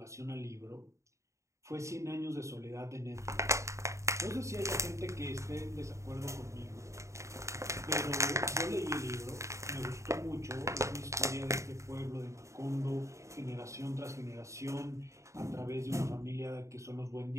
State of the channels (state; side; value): late; left; 0.14 ms